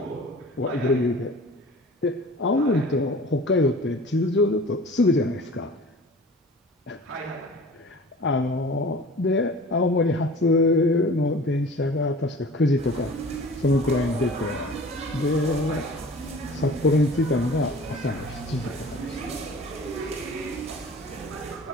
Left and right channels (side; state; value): both; normal; correlation 0.42